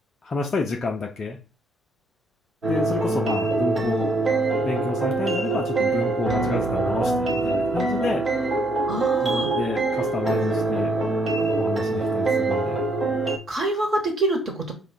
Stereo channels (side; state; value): both; normal; correlation 0.70